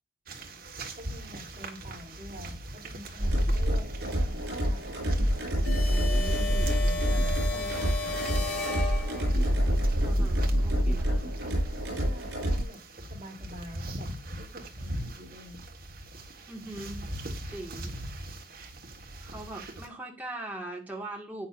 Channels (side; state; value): both; normal; correlation 0.83